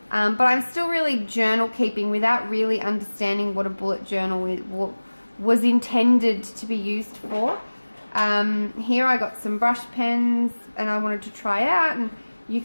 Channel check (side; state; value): both; inverted; correlation -1.00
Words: But I'm still really journal keeping without really understanding what a bullet journal was intended to be used for. Here I got some brush pens and I wanted to try out, and you